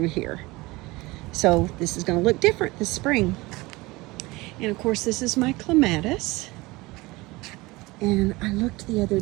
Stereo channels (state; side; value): quieter; left; 21.8 dB